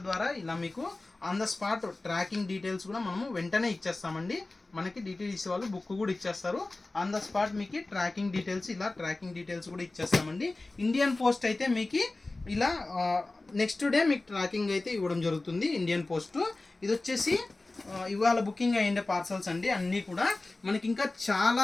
ద్వారా ఇలా మీకు on the spot tracking details కూడా మనము వెంటనే ఇచ్చేస్తామండి. మనకి డిటిడిసి వాళ్ళు బుక్ కూడా ఇచ్చేస్తారు. ఆన్ ద స్పాట్ మీకు ట్రాకింగ్ డీటెయిల్స్ కూడా ఇచ్చేస్తామండి. ఇండియన్ పోస్ట్ అయితే మీకు ఇలా నెక్స్ట్ డే మీకు ట్రాకింగ్ అయితే ఇవ్వడం జరుగుతుంది. ఇండియన్ పోస్ట్ ఇది వచ్చేసి ఇవాళ బుకింగ్ అయ్యిండే పార్సల్స్ అండి. అన్నీ కూడా మనకి ఇంకా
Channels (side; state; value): right; quieter; 3.1 dB